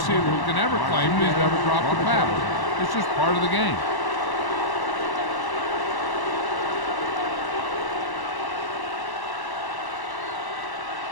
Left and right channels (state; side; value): late; right; 1.1 ms